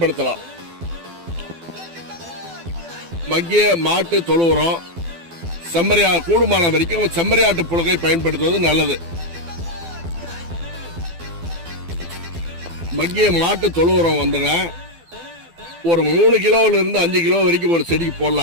மக்கிய மாட்டு தொழு உரம், கூடுமான வரைக்கும் செம்மறியாட்டு புழுகை பயன்படுத்துவது நல்லது. மக்கிய மாட்டு தொழு உரம் ஒரு 3 கிலோல இருந்து 5 கிலோ வரைக்கும் ஒரு செடிக்கு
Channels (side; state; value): left; late; 12 ms